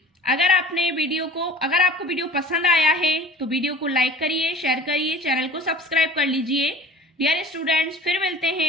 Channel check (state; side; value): normal; both; correlation 0.43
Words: अगर आपको वीडियो पसंद आया है तो वीडियो को लाइक करिए, शेयर करिए, चैनल को सब्सक्राइब कर लीजिए। डियर स्टूडेंट्स, फिर मिलते